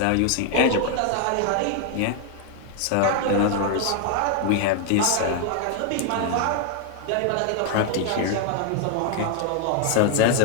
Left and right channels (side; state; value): both; different; correlation 0.00